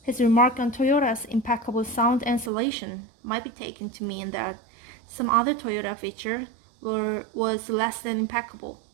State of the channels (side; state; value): left; drops out; at 2.5 s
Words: his remark on Toyota's impeccable sound insulation might be taken to mean that some other Toyota feature was less than impeccable.